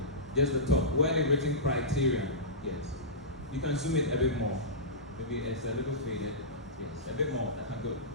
Just the top. Where the written criterion, yes. You can zoom it a bit more. Maybe it's a little faded. Yes, a bit more. That's good.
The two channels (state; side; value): normal; both; correlation -0.18